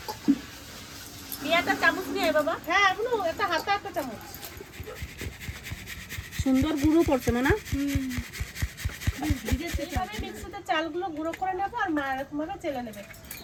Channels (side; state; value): both; identical; correlation 1.00